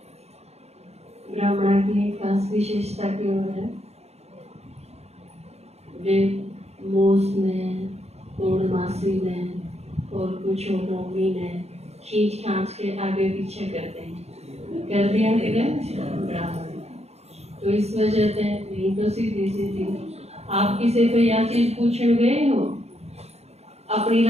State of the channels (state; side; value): late; left; 0.31 ms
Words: ब्राह्मण की एक खास विशेषता की ओर है। वे मोस में, पूर्णमासी में और कुछ नौमी में खींच खांच के आगे पीछे करते हैं। कर दिया कि ब्राह्मण। तो इस वजह से नहीं तो सीधी सीधी आप किसी को यह चीज पूछने गए हो अपनी